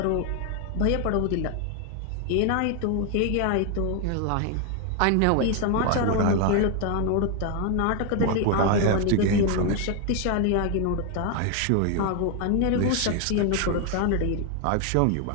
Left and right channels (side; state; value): both; different; correlation 0.01